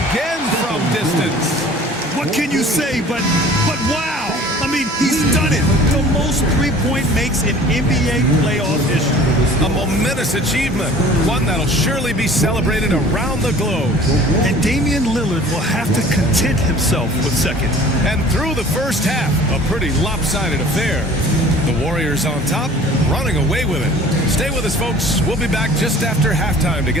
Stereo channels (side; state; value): both; normal; correlation 0.47